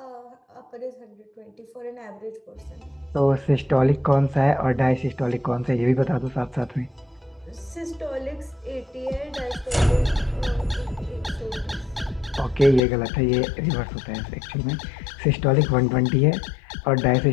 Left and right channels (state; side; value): drops out; right; at 12.8 s